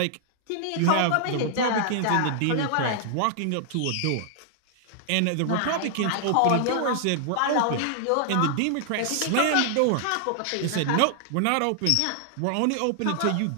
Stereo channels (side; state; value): both; different; correlation -0.01